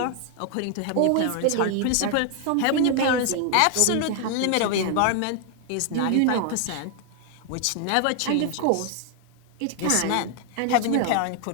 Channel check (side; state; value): both; different; correlation 0.00